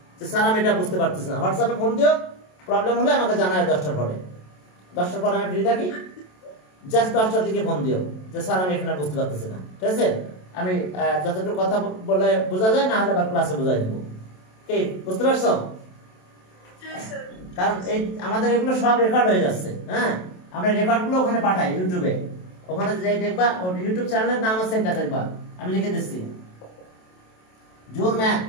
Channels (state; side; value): late; right; 27 ms